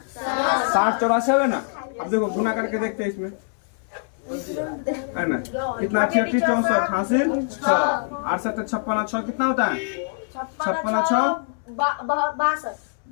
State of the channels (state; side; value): silent; right; 63 dB below the other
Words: 60 84 है ना। अब देखो गुना करके देखते हैं इसमें है ना कितना 88 64 हासिल 6 8 7 56 और 6 कितना होता है 56 और 6